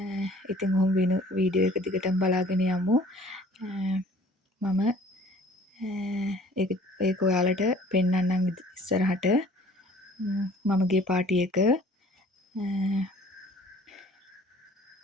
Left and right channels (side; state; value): both; normal; correlation 0.52